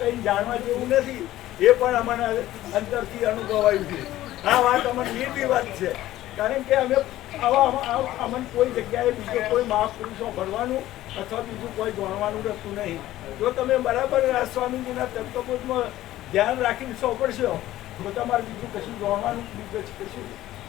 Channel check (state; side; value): quieter; right; 14.8 dB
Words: જાણવા જેવું નથી એ પણ અમને અંદરથી અનુભવાયું છે. આ વાત અમને નિર્ભી વાત છે કારણ કે અમે અમને કોઈ જગ્યાએ બીજો કોઈ મહાપુરુષો ભરવાનું અથવા બીજું કોઈ જાણવાનું રહેતું નહીં. જો તમે બરાબર આ સ્વામીજીના તત્વબોધમાં ધ્યાન રાખીને સોંપડશો તો તમારે બીજું કશું જાણવાનું બીજું કશું